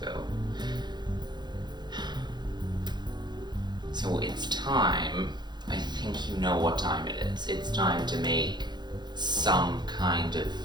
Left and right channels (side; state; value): left; late; 0.21 ms